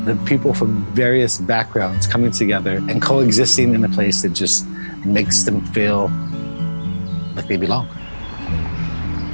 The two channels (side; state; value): both; inverted; correlation -1.00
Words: the people from various backgrounds coming together and coexisting in a place that just makes them feel like they belong.